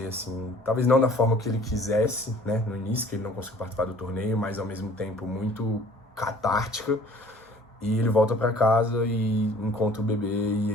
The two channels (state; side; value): normal; both; correlation 0.52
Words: assim, talvez não da forma que ele quisesse, né, no início, que ele não conseguiu participar do torneio, mas ao mesmo tempo muito catártica. E ele volta para casa e encontra o bebê,